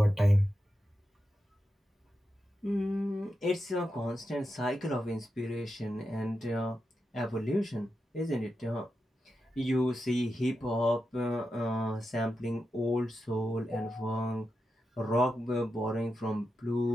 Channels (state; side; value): normal; both; correlation 0.88